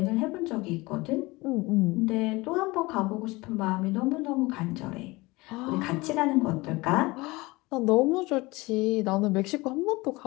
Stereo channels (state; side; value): quieter; right; 22.4 dB